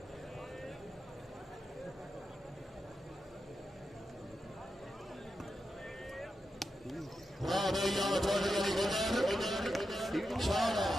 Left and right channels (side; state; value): both; normal; correlation 0.88